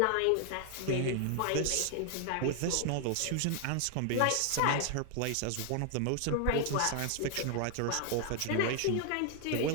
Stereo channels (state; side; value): different; both; correlation 0.00